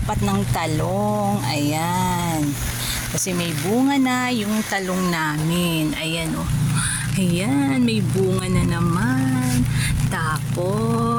ng talong. Ayan. Kasi may bunga na yung talong namin. Ayan, oh. Ayan, may bunga na naman.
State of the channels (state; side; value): identical; both; correlation 1.00